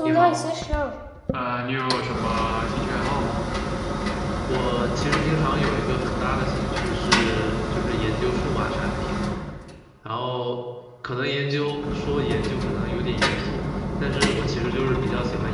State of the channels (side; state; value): both; identical; correlation 1.00